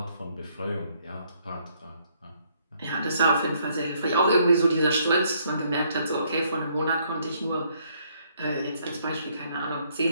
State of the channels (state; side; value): inverted; both; correlation -0.69